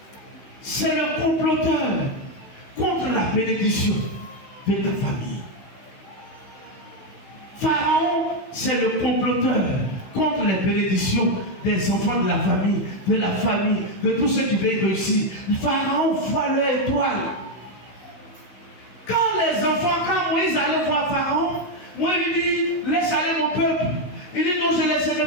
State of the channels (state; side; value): late; right; 16 ms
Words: c'est le comploteur contre la bénédiction de ta famille. Pharaon, c'est le comploteur contre les bénédictions des enfants de la famille, de tous ceux qui veulent réussir. Pharaon voit leur étoile. Quand Moïse allait voir Pharaon, Moïse lui dit, laisse aller mon peuple. Il dit, non, je ne